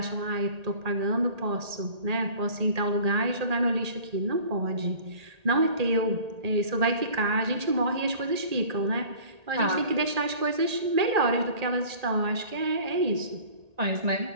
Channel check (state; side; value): late; left; 1.8 ms